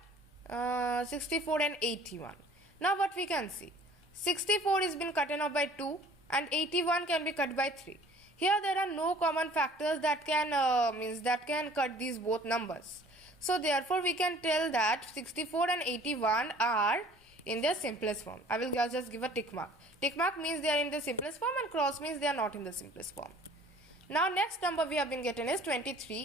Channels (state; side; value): normal; both; correlation 0.51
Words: 64 and 81. Now what we can see? 64 is been cutten off by 2 and 81 can be cut by 3. Here there are no common factors that can cut these both numbers. So therefore we can tell that 64 and 81 are in their simplest form. I will just give a tick mark. Tick mark means they are in the simplest form and cross means they are not in the simplest form. Now next number we have been getting is